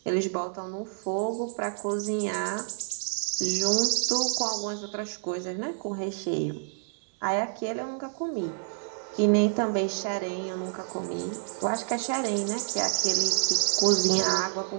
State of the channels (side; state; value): left; silent; digital silence